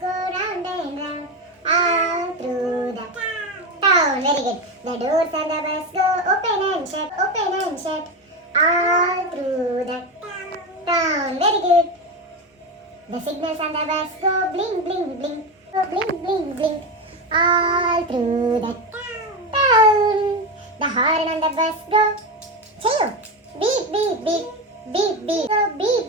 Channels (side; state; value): both; normal; correlation 0.17